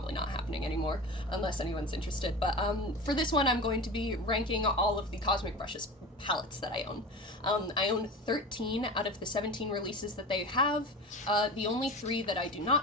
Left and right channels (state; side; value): normal; both; correlation 0.31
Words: not happening anymore, unless anyone's interested, but for this one I'm going to be ranking all of the Cosmic Brushes palettes that I own. I own 13 out of the 17 releases that they have. The only 3 that I do